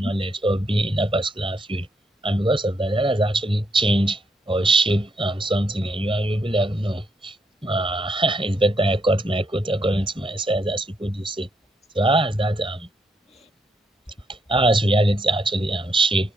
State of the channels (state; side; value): normal; both; correlation 0.77